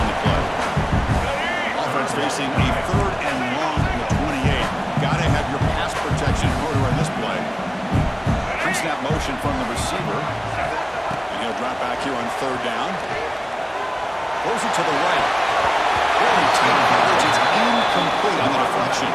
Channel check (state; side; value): identical; both; correlation 1.00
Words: the play. Offense facing a 3rd and long from the 28. Gotta have your pass protection in order on this play. Pre-snap motion from the receiver. And he'll drop back here on 3rd down. Throws it to the right. Really tight coverage. It's incomplete on the deflection.